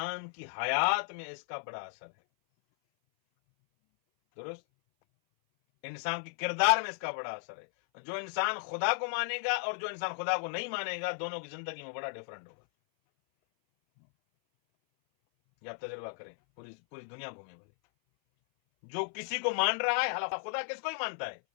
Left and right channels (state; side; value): silent; right; 55 dB below the other